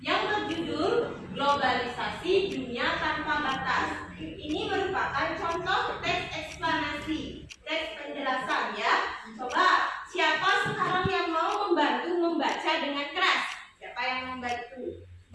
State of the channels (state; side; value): identical; both; correlation 1.00